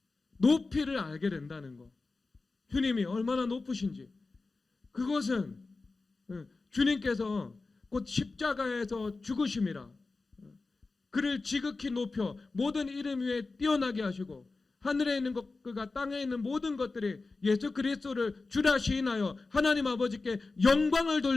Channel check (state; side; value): quieter; right; 3.7 dB